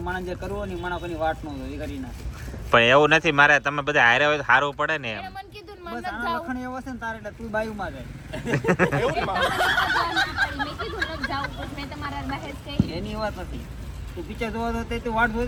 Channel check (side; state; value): both; identical; correlation 1.00